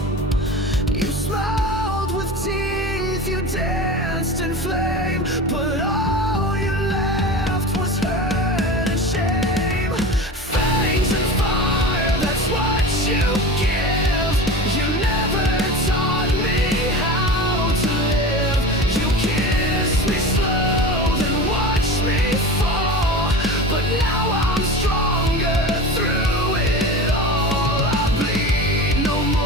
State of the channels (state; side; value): normal; both; correlation 0.31